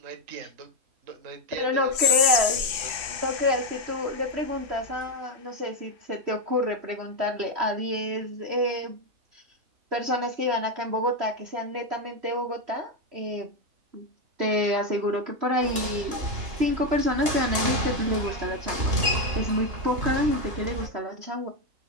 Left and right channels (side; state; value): left; late; 3.1 ms